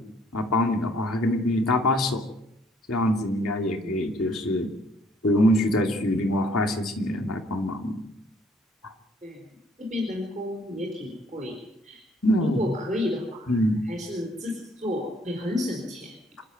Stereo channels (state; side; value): normal; both; correlation 0.63